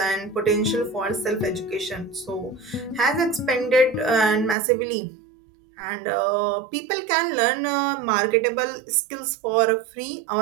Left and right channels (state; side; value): drops out; left; at 4.5 s